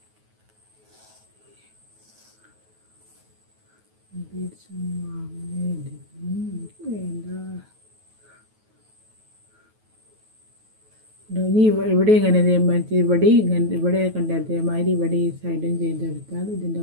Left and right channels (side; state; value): left; late; 9.3 ms